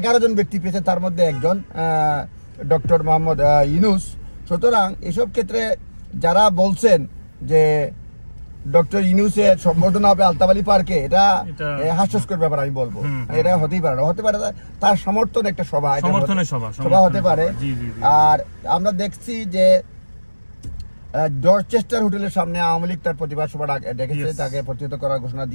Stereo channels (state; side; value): inverted; both; correlation -1.00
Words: জন ব্যক্তি পেয়েছে, তার মধ্যে একজন ডক্টর মোহাম্মদ ইউনূস। সুতরাং এসব ক্ষেত্রে যারা বলছেন যে ডক্টর ইউনূসের সম্বর্ধনা হবে আলতাবালি পার্কে, এটা হাস্যস্কর ব্যাপার আমি বলবো। এটা হতেই পারে না, হতে পারে তার সমর্থন একটা সভা হতে পারে। আর আমরা দেখছি যে ডরচেস্টার হোটেলের সামনে আওয়ামী লীগ তার প্রতিবাদ সভা ডেকেছে, তাকে প্রতিহত করার ঘোষণা